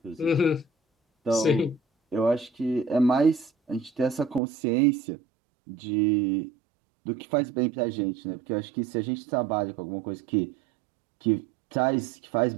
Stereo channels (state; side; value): drops out; left; at 4.4 s